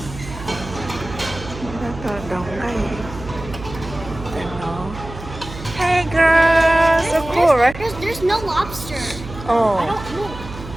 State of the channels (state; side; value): noise; right; hum, 12 dB below the sound